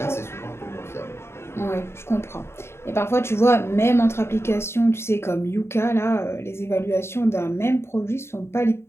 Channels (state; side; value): late; right; 0.12 ms